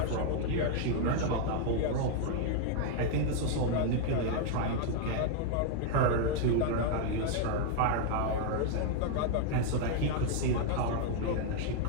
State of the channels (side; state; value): both; different; correlation 0.00